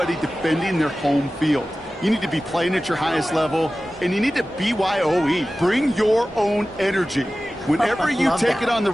defending their home field. You need to be playing at your highest level, and you need to BYOE. Bring your own energy. Whenever you Love take that. it on the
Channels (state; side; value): normal; both; correlation 0.96